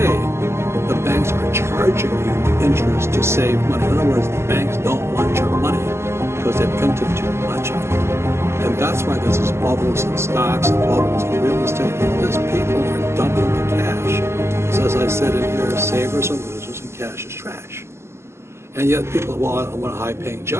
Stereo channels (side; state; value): left; late; 0.13 ms